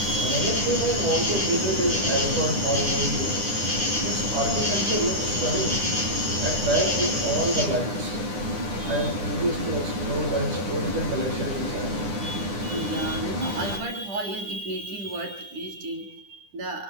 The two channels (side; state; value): left; late; 9.9 ms